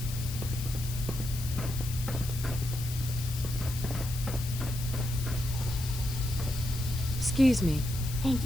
Excuse me. Thank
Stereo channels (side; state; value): left; noise; hiss, 10 dB below the sound